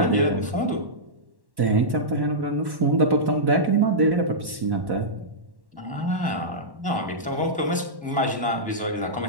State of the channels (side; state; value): left; late; 1.1 ms